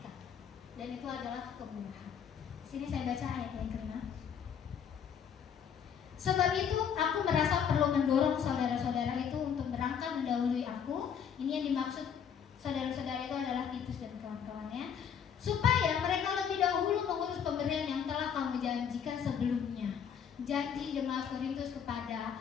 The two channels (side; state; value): right; quieter; 7.8 dB